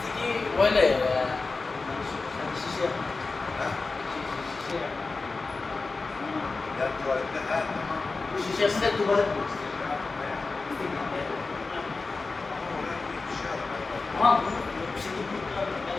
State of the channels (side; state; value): right; quieter; 3.9 dB